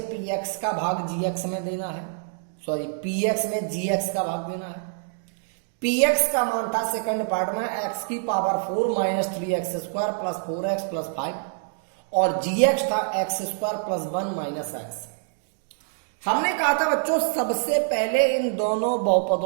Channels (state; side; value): silent; left; digital silence